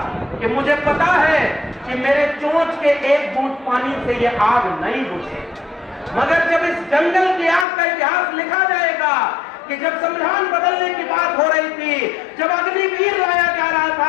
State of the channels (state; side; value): drops out; right; at 7.7 s